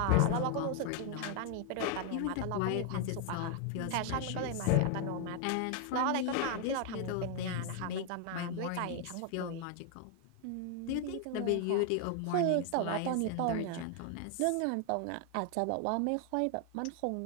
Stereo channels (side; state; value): both; different; correlation 0.00